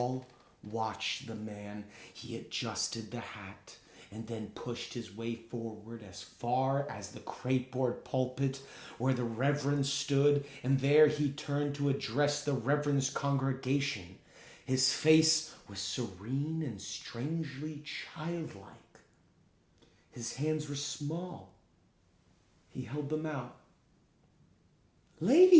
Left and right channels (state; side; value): identical; both; correlation 1.00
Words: watched the man. He adjusted the hat and then pushed his way forward as far as the crapeboard pulpit where the Reverend stood, and there he turned to address the Reverend's congregation. His face was serene and strangely childlike. His hands were small. He held them out.